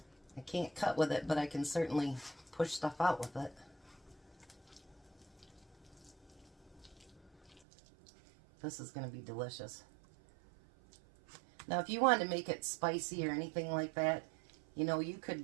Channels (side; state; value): left; drops out; at 7.6 s